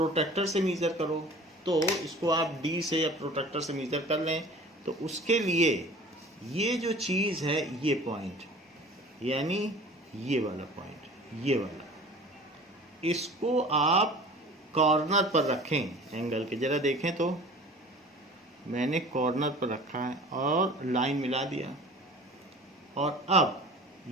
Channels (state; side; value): normal; both; correlation 0.43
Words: से मीजर करो, तो इसको आप डी से या प्रोटेक्टर से मीजर कर लें। तो उसके लिए ये जो चीज़ है, ये पॉइंट यानी ये वाला पॉइंट, ये वाला, इसको आप कॉर्नर पर रखें एंगल के। ज़रा देखें तो मैंने कॉर्नर पर रखा है और लाइन मिला दिया, और अब